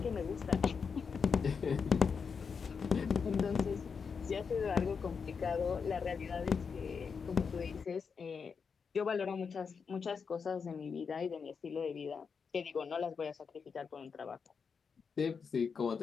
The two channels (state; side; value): quieter; right; 5.8 dB